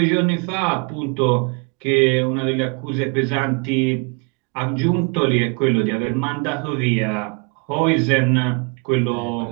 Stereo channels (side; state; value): left; quieter; 33.5 dB